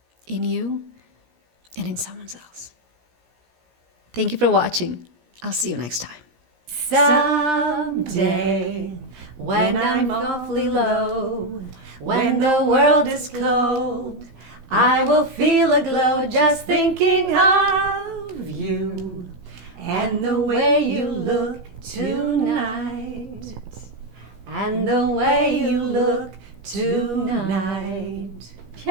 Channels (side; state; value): left; late; 17 ms